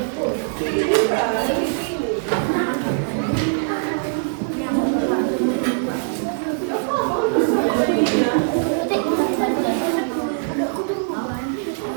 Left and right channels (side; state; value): left; silent; 59 dB below the other